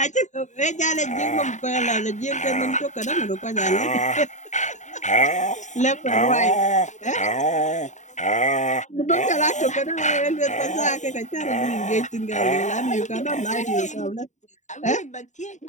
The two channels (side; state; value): right; late; 0.35 ms